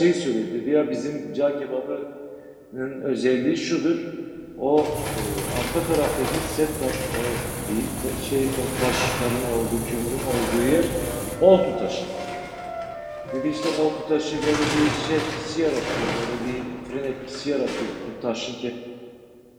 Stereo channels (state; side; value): identical; both; correlation 1.00